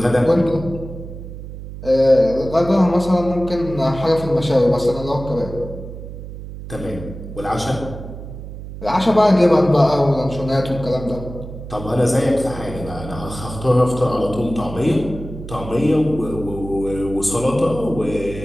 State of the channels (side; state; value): right; noise; hum, 11 dB below the sound